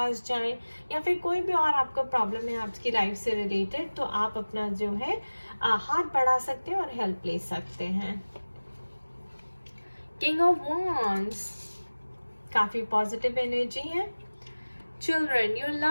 जाएं या फिर कोई भी और आपको प्रॉब्लम है आपकी लाइफ से रिलेटेड तो आप अपना जो है हाथ बढ़ा सकते हैं और हेल्प ले सकते हैं। किंग ऑफ वॉन्ड्स, काफ़ी पॉजिटिव एनर्जी है। Children, your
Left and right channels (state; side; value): inverted; both; correlation -1.00